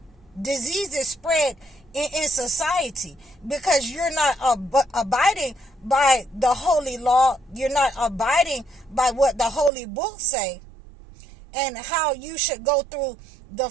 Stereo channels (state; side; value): drops out; left; at 9.7 s